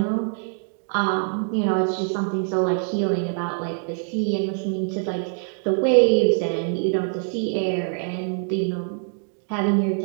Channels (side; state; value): left; silent; 58 dB below the other